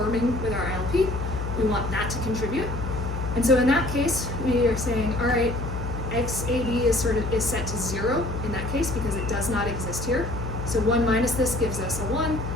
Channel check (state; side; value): noise; left; hum, 5 dB below the sound